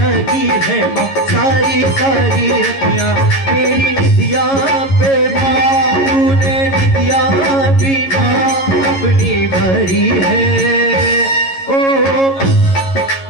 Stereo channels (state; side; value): late; right; 11 ms